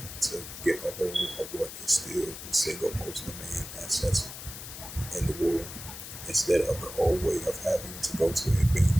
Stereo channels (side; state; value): left; noise; hiss, 11 dB below the sound